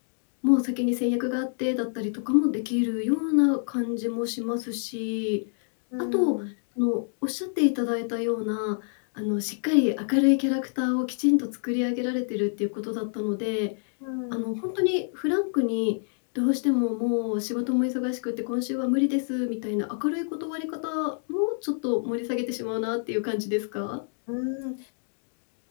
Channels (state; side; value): silent; right; digital silence